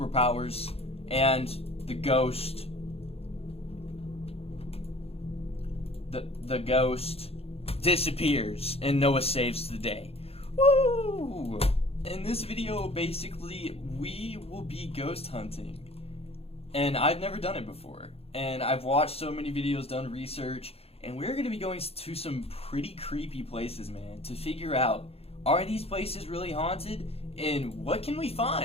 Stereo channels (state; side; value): late; right; 0.29 ms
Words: and the ghost. The ghost disappears, and Noah saves the day. Woo! In this video, basically, we will be ghost hunting. And I've never done it before. And I've watched so many videos, done research, and we're going to be going to some pretty creepy places, man, to figure out, are these places really haunted? And what can we